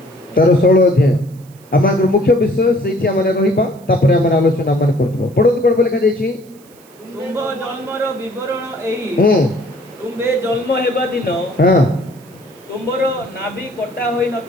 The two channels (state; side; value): noise; right; hiss, 28 dB below the sound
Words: ତାର 16 ଅଧ୍ୟାୟ ଆମର ମୁଖ୍ୟ ବିଷୟ ସେଇଠି ଆମେ ରହିବା। ତାପରେ ଆମେ ଆଲୋଚନା ଆମେ କରୁଥିବା। ପଢନ୍ତୁ କ'ଣ ଲେଖାଯାଇଛି? ତୁମ୍ଭ ଜନ୍ମର ବିବରଣ ଏହି। ତୁମ୍ଭେ ଜନ୍ମ ହେବା ଦିନ ତୁମ୍ଭର ନାଭି କଟା ହୋଇ